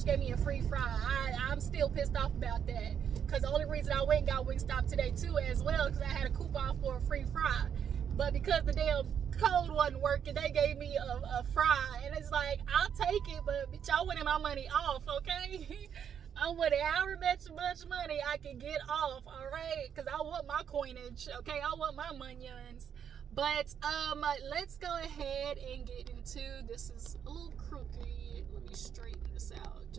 me a free fry. I'm still pissed off about that. Because the only reason I went and got Wingstop today too as well, because I had a coupon for a free fry. But because the damn code wasn't working, they gave me a fry. And it's like, I'll take it, but bitch, I wanted my money off, okay? I wanted however much money I can get off, all right? Because I want my coinage, okay? I want my monions. But let's go ahead and get into, this is a little crooked. Let me straighten this out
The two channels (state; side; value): quieter; left; 8.2 dB